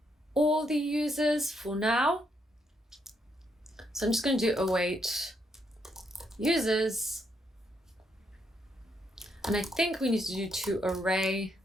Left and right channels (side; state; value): both; normal; correlation 0.76